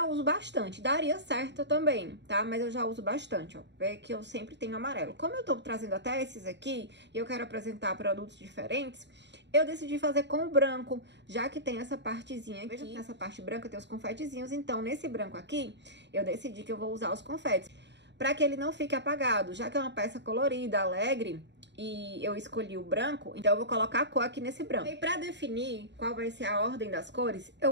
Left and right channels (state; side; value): late; left; 0.52 ms